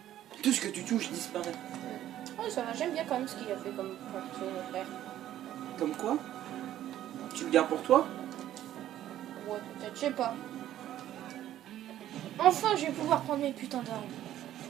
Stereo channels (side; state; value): left; quieter; 12.4 dB